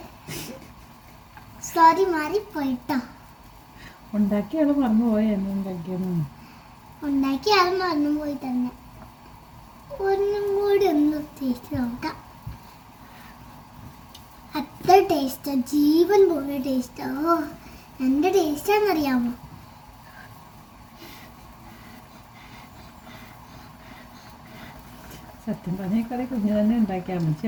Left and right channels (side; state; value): both; identical; correlation 1.00